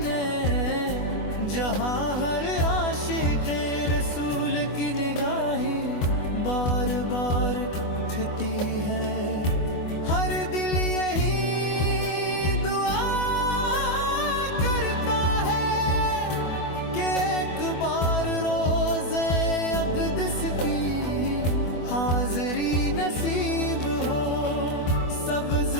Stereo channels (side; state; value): right; late; 24 ms